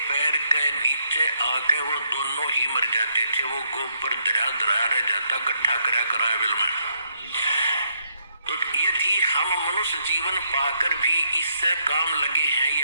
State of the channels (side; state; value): both; inverted; correlation -0.74